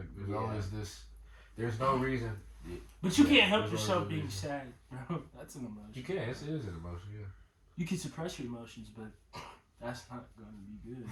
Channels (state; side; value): identical; both; correlation 1.00